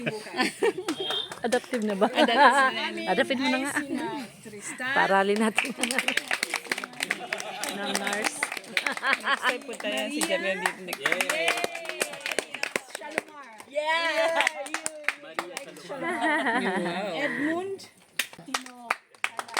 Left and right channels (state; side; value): identical; both; correlation 1.00